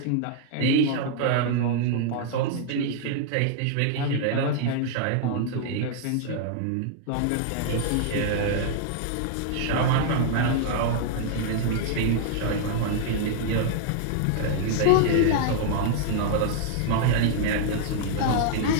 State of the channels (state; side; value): different; both; correlation -0.01